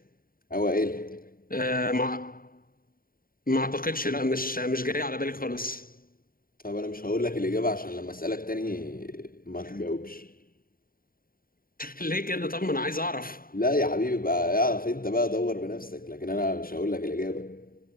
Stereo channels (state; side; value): late; right; 0.42 ms